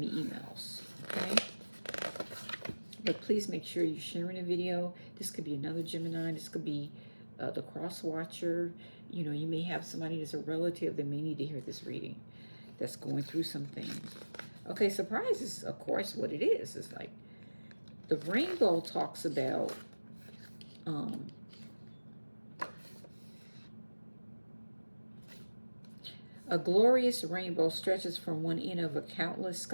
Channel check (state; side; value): inverted; both; correlation -1.00